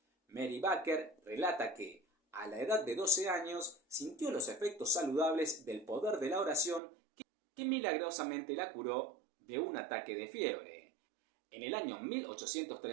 Mary Baker relata que, a la edad de 12 años, sintió los efectos saludables del poder de la oración que milagrosamente la curó de un ataque de fiebre. En el año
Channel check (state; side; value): drops out; left; at 6.8 s